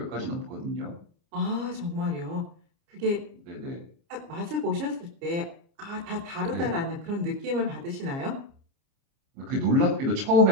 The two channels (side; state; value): left; late; 29 ms